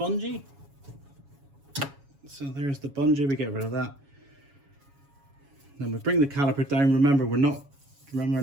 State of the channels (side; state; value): left; late; 7.2 ms